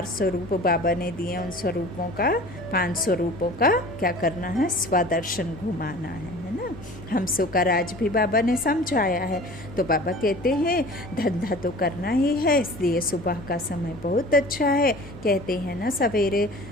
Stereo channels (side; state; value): left; noise; hum, 17 dB below the sound